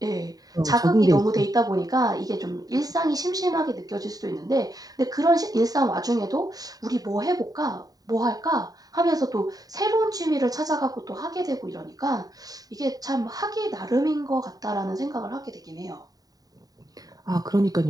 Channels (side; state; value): left; late; 0.18 ms